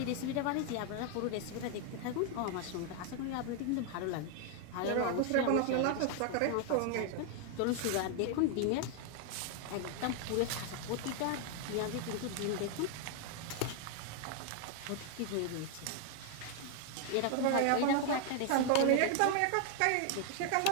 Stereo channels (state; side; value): different; both; correlation 0.00